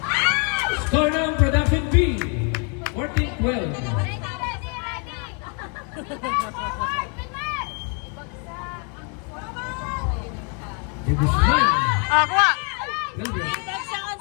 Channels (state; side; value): quieter; right; 38.2 dB